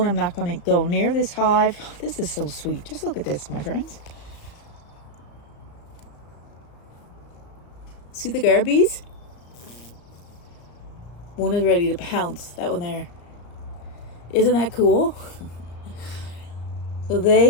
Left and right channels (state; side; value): late; right; 34 ms